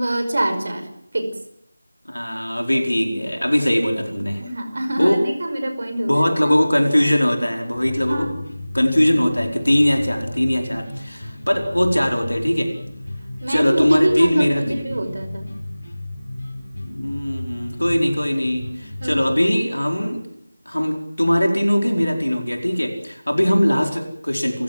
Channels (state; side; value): inverted; both; correlation -0.98